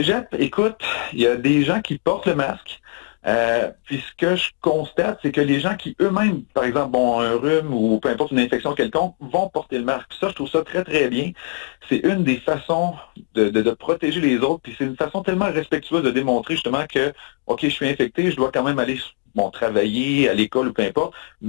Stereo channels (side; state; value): right; quieter; 35.5 dB